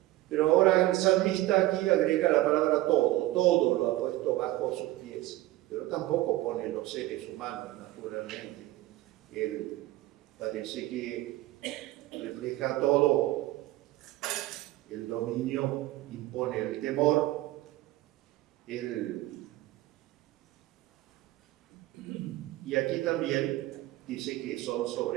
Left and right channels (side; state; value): left; quieter; 17.0 dB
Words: Pero ahora el salmista aquí agrega la palabra todo lo ha puesto bajo sus pies, pero tampoco pone los seres humanos, naturalmente. Él parece que refleja todo. El dominio impone el temor, y aquí también dice que son